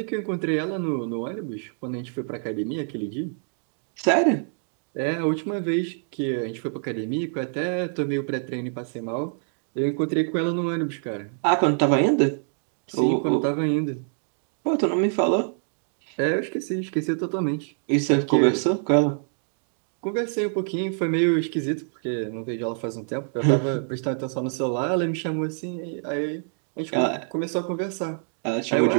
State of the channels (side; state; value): left; silent; digital silence